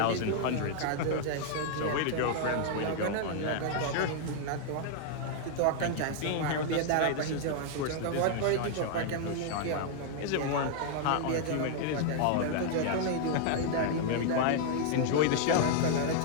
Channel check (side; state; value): both; different; correlation -0.01